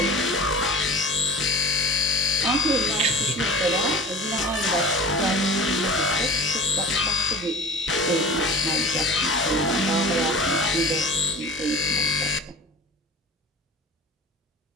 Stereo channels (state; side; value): normal; both; correlation 0.38